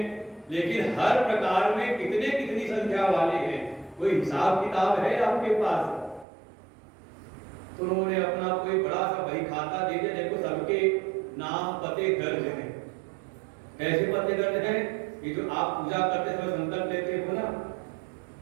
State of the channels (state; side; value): drops out; left; at 6.2 s